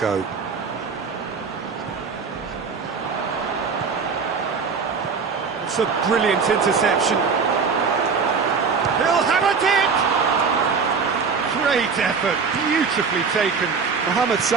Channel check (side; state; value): left; quieter; 5.4 dB